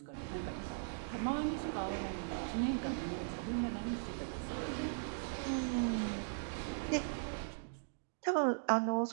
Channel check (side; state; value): left; silent; digital silence